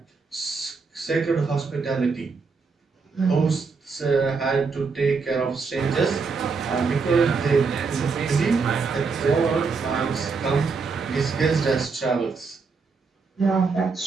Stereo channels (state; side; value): quieter; left; 4.8 dB